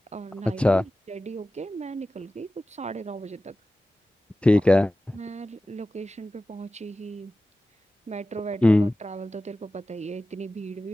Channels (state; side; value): normal; both; correlation 0.95